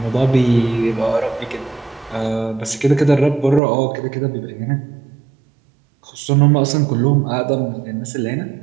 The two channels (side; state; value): left; drops out; at 3.6 s